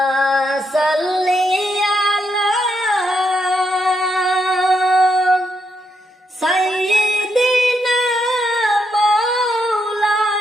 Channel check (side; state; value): both; normal; correlation 0.79